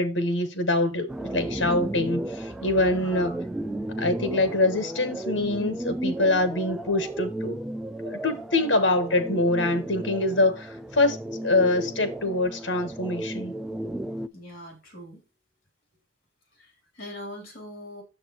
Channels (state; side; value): normal; both; correlation -0.04